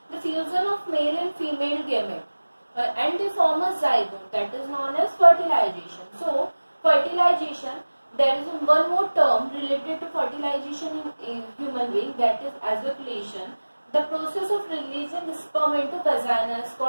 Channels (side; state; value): both; inverted; correlation -1.00